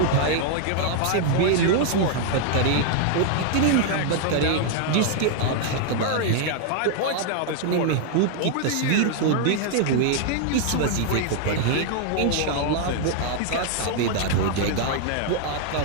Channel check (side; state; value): both; different; correlation 0.00